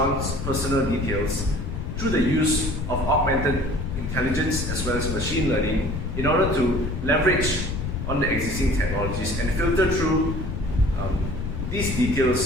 personal details through the use of augmented intelligence as well as machine learning in order to leverage on the existing technologies and filter through these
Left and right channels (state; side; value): noise; left; rumble, 4 dB below the sound